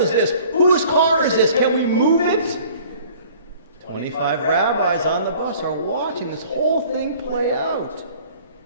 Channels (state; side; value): inverted; both; correlation -0.51